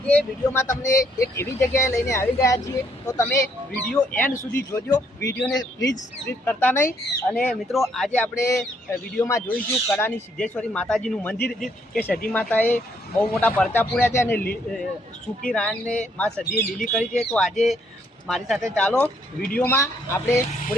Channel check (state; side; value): normal; both; correlation 0.70